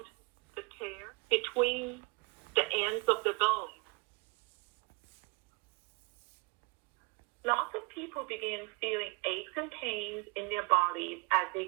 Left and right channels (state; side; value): quieter; left; 30.6 dB